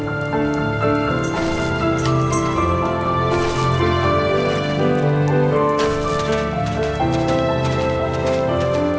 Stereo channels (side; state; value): both; identical; correlation 1.00